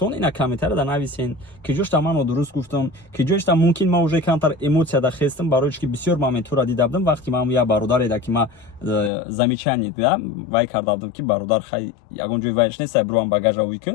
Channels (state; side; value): drops out; right; at 9.1 s